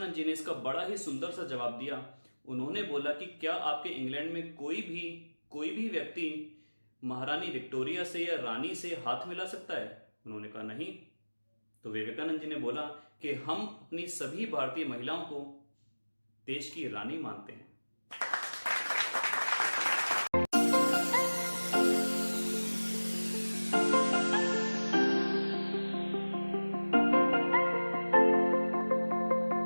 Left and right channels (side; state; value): both; inverted; correlation -1.00